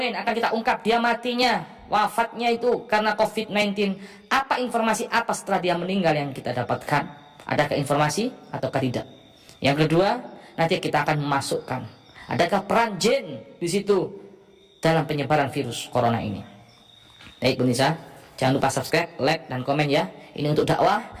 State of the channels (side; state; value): both; identical; correlation 1.00